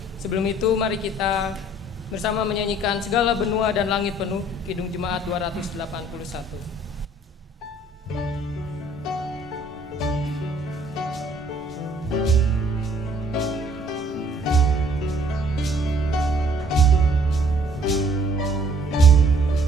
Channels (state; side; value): normal; both; correlation 0.59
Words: Sebelum itu mari kita bersama menyanyikan Segala Benua dan Langit Penuh, Kidung Jemaat 281.